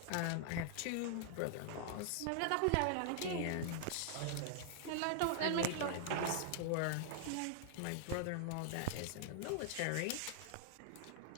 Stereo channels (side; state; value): both; different; correlation -0.01